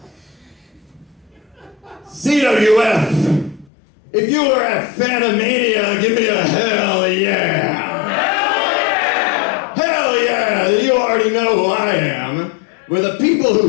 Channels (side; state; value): right; drops out; at 3.7 s